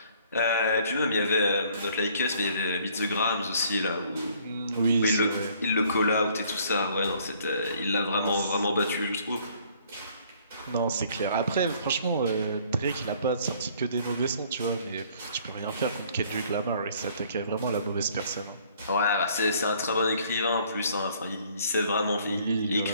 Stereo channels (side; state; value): both; inverted; correlation -0.60